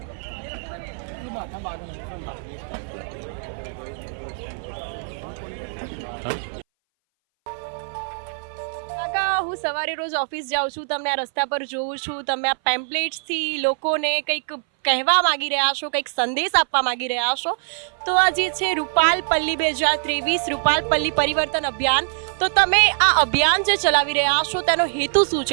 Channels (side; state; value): left; silent; 60 dB below the other